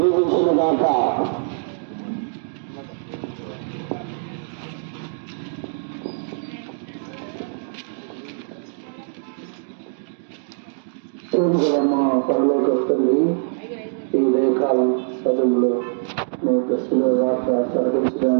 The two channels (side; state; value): left; silent; digital silence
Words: దీవించునుగాక. మా పరలోక తండ్రి, ఈ ఉదయకాలం సభలో మీ దశలో వార్త